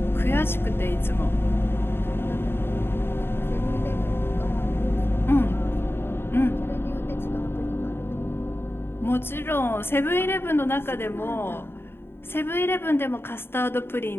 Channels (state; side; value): late; right; 0.11 ms